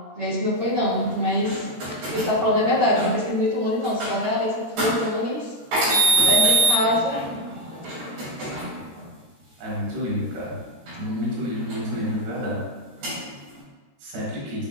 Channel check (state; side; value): late; left; 13 ms